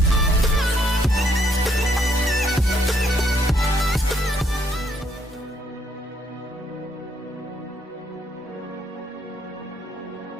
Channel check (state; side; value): normal; both; correlation 0.71